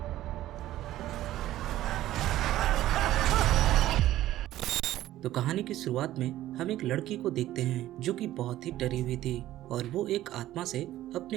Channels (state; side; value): quieter; left; 14.2 dB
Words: तो कहानी की शुरुआत में हम एक लड़की को देखते हैं जो कि बहुत ही डरी हुई थी और वो एक आत्मा से